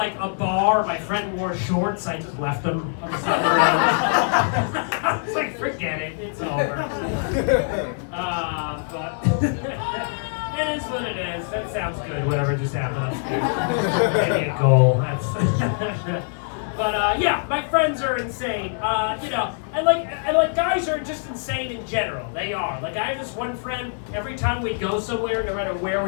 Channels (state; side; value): silent; right; 63 dB below the other